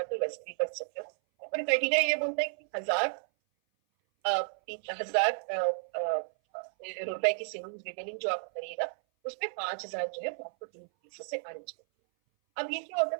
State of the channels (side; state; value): left; silent; 56 dB below the other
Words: हो, वैसे भी कर सकते हो। और क्राइटेरिया ये बोलता है कि 1,000 रुपए की सेविंग्स रिटेलिंग जो आप करिएगा उसमें 5,000 जो है वो आपको 3 पीसी से आने चाहिए। अब ये क्या होता